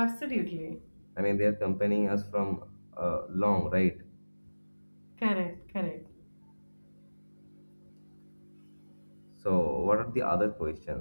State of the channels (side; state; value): both; inverted; correlation -1.00